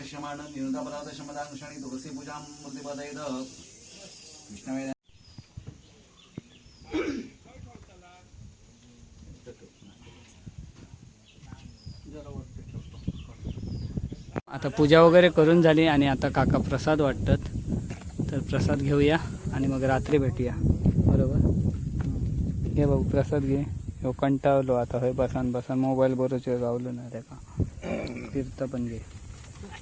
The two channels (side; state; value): both; identical; correlation 1.00